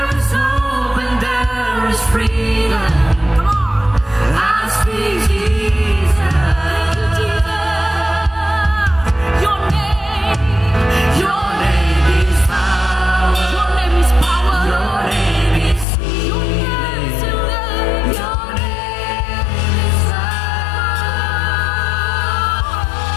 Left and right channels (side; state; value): right; drops out; at 15.9 s